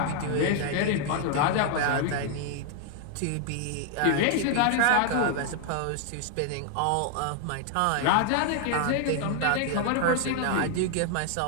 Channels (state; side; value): different; both; correlation 0.00